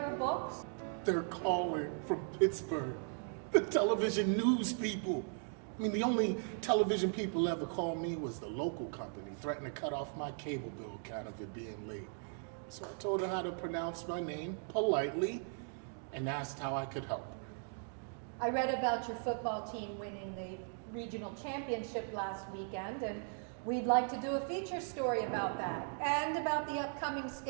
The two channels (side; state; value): left; silent; 52 dB below the other